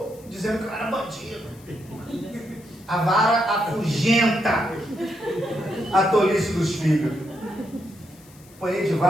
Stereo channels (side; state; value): left; noise; hiss, 25 dB below the sound